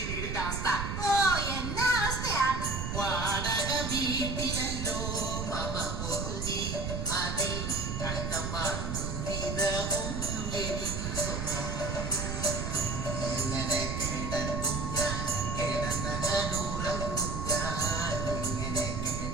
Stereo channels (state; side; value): noise; right; rumble, 3 dB below the sound